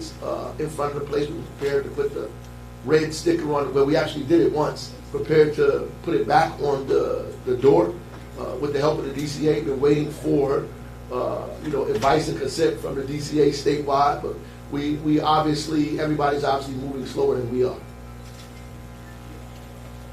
in front of the place. We were prepared to put the red sticker on it. Well, we actually did it once. Prepared to put it back on the door with the help of the DCA. Been waiting for advice and consent from the DCA statewide, but we obviously, everybody's obviously moving slower than we are.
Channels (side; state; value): both; identical; correlation 1.00